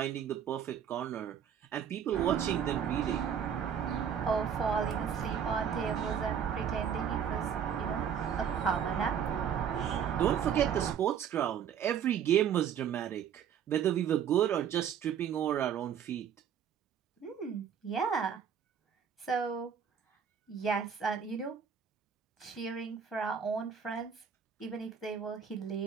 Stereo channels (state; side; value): quieter; left; 8.2 dB